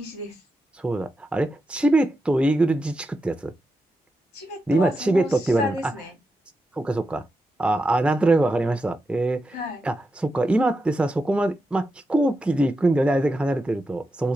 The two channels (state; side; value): normal; both; correlation 0.88